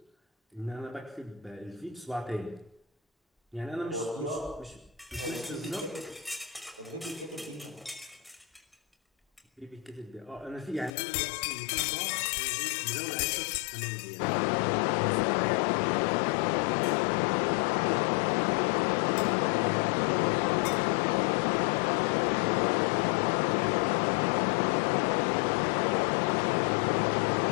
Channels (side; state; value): right; drops out; at 10.9 s